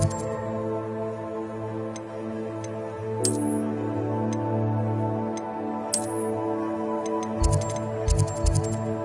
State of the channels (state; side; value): identical; both; correlation 1.00